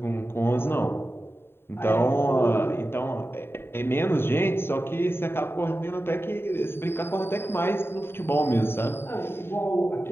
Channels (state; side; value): late; right; 0.11 ms